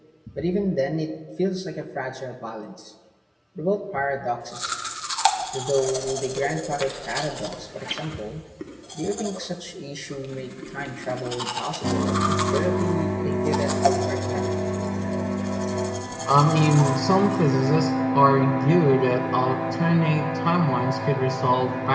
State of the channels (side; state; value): both; identical; correlation 1.00